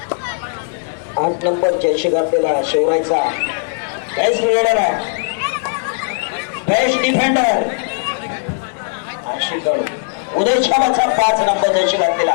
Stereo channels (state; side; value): silent; right; 68 dB below the other